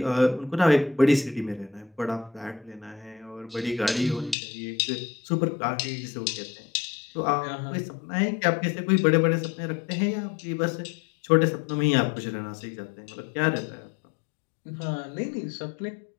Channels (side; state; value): right; drops out; at 4.4 s